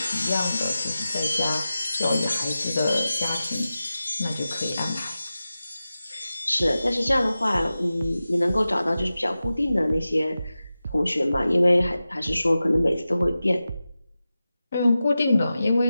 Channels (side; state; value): both; inverted; correlation -0.94